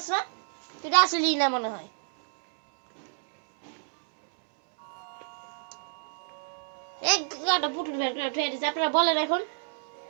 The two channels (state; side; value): silent; left; digital silence